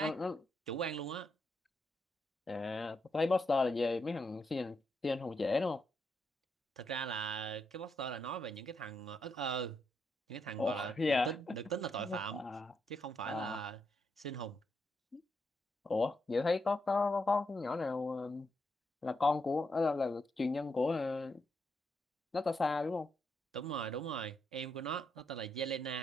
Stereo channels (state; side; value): normal; both; correlation 0.81